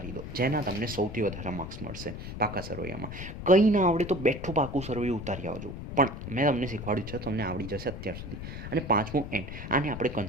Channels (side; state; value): left; noise; rumble, 9 dB below the sound